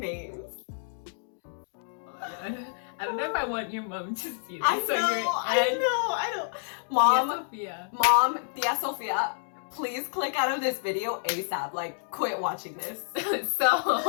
I don't know if I want your mom to see this. I know. Mom, Tia Sofia, please click out of this video ASAP. Like, quit watching this.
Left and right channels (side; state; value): right; silent; digital silence